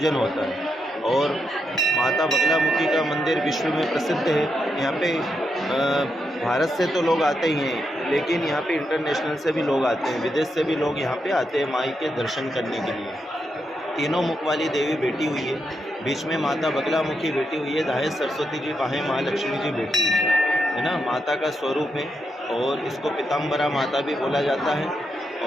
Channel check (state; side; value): normal; both; correlation 0.83